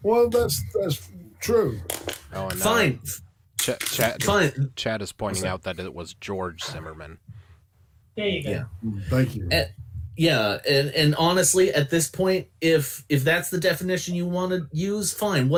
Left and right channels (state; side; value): identical; both; correlation 1.00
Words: Well, that's true. Oh, and Fine. Fine. Chad is pointing out that it was George Zimmerman. There you go. Yeah. Thank you. Yeah, and honestly, at this point, if that's the definition you want to use, fine,